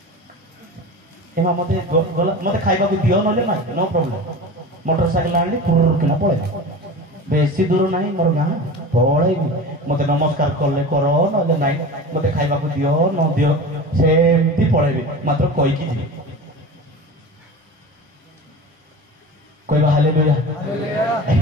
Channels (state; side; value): normal; both; correlation 0.32